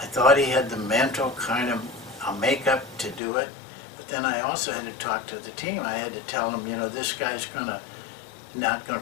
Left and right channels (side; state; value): right; drops out; at 3.2 s